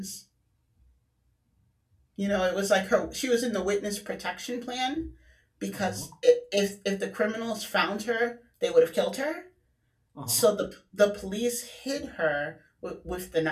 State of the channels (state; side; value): identical; both; correlation 1.00